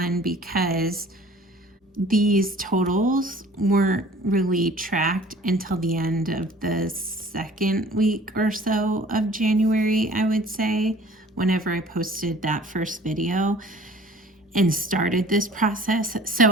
because these totals weren't really tracked until the end of the second week or so of January, I would say, whenever I posted that first video and started this process. So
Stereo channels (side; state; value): both; normal; correlation 0.49